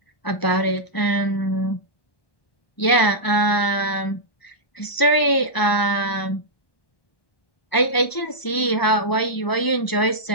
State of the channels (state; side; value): late; right; 1.0 ms